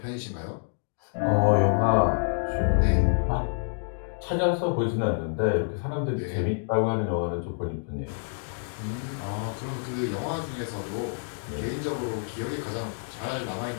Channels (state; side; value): silent; right; digital silence